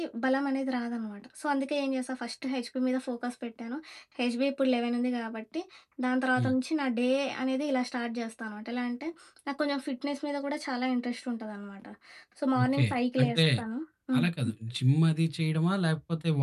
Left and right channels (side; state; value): both; identical; correlation 1.00